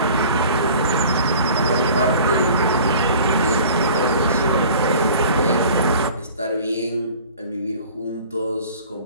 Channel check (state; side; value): inverted; both; correlation -0.45